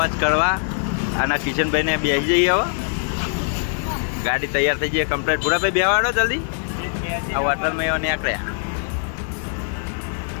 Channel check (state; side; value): silent; right; digital silence